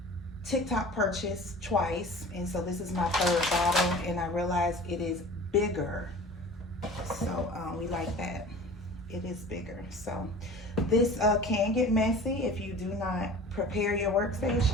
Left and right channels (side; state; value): both; normal; correlation 0.41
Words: TikTok purchase twice, and so this is my third bottle, and I realized it is bigger. So we like that. It is bigger. So this can get messy if you do not prepare your